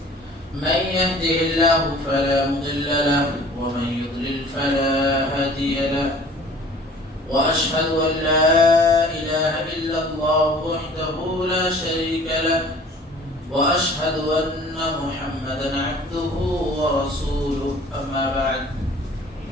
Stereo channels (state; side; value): normal; both; correlation 0.49